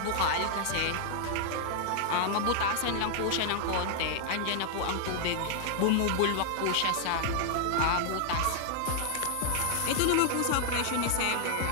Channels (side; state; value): both; different; correlation -0.01